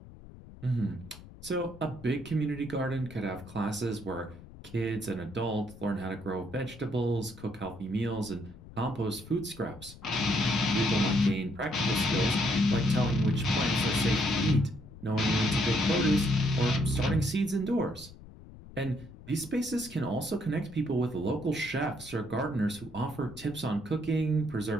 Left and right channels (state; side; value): noise; left; rumble, 18 dB below the sound